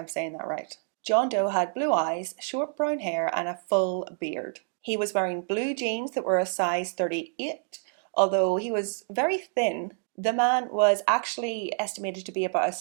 saying that right. John Doe had blue eyes, short brown hair, and a full beard. He was wearing blue jeans that were a size 38. Although he was very thin, the man was actually estimated to be about a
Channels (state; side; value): silent; left; 60 dB below the other